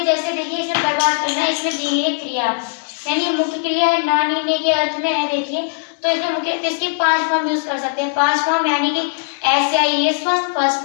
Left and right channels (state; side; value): silent; right; digital silence